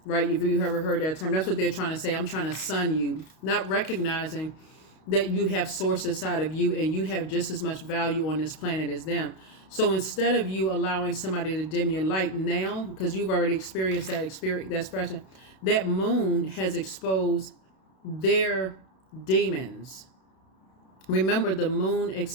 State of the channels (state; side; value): late; right; 32 ms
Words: right? If you ever heard that term, that's what they're trying to say. I'm trying to son you, not recognizing that you have source inside of you and you have just as much value on this planet as them. So instead of you allowing somebody to dim your light now, because you've already experienced that expression, that moon has exposed their demons. Remember, the moon